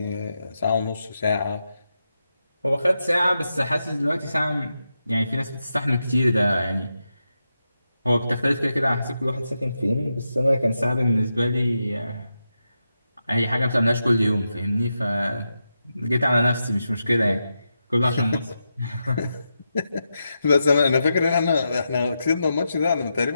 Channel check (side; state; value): both; inverted; correlation -0.88